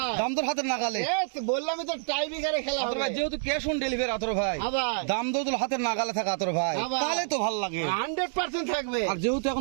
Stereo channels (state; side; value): silent; left; digital silence